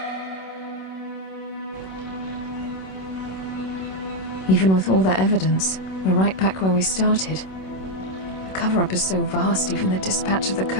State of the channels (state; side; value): late; right; 26 ms